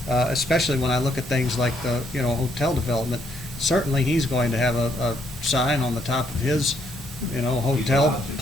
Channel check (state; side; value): normal; both; correlation 0.71